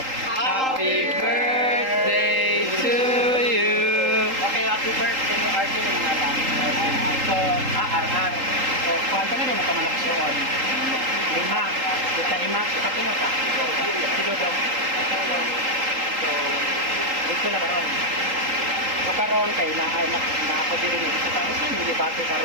Happy birthday to you. Okay, happy birthday. Arthur yung mga lang. So, RR. So, kwanto na din ang kamalaksyon. 5. Kita 5. Sa pino pa. Sigo daw. So, gusto na karon. So, karon kay na ako din rin. So, tapos yung debate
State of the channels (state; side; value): late; left; 3.8 ms